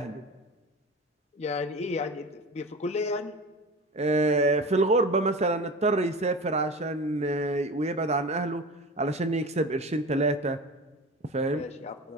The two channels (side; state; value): both; normal; correlation 0.32